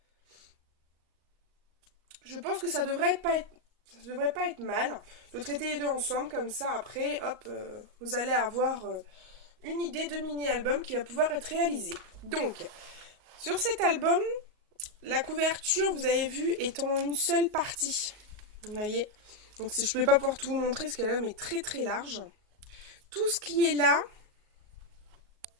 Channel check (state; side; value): late; left; 38 ms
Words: ça devrait pas être mal de traiter les deux ensemble comme ça après, hop, vous allez avoir une idée de mini-album qui va pouvoir être réalisé. Donc, sur cet album, la couverture, vous avez vu, est en une seule partie. Vous voyez? Donc je ne vais pas pouvoir tout vous montrer parce que l'album est très très large. Tout ce qui est là,